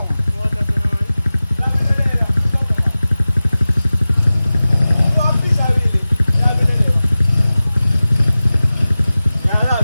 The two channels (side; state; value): both; inverted; correlation -0.96